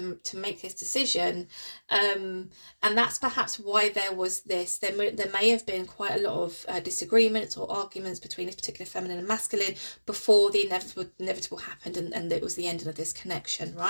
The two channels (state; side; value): inverted; both; correlation -1.00